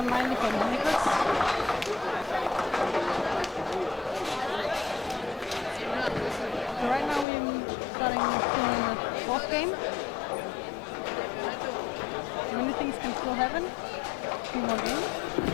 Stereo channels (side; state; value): right; drops out; at 7.2 s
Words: for Nicholas. So right now we're starting soon in the 4th game. Many things can still happen. 3 more games.